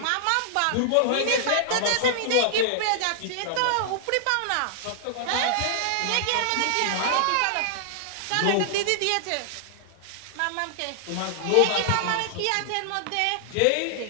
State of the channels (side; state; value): both; different; correlation -0.01